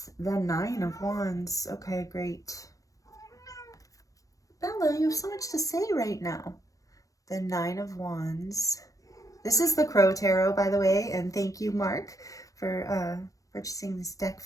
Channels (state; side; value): late; right; 0.16 ms